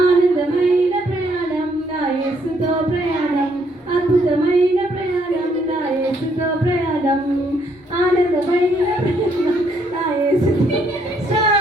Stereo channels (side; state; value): both; normal; correlation 0.70